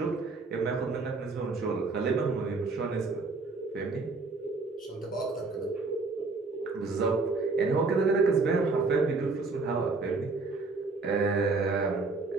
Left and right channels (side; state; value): left; quieter; 3.9 dB